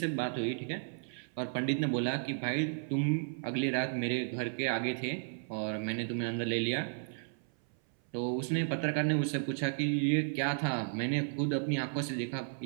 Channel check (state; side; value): silent; left; 55 dB below the other